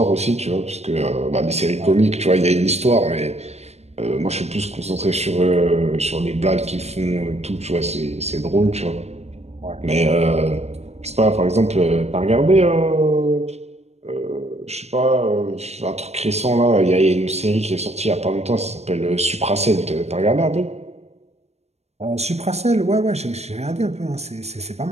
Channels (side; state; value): left; late; 0.31 ms